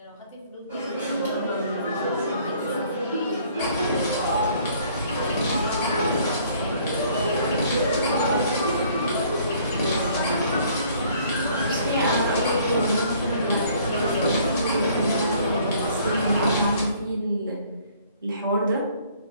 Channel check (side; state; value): both; inverted; correlation -0.59